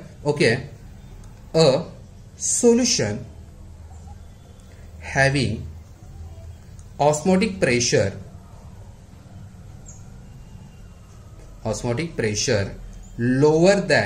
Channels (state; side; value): identical; both; correlation 1.00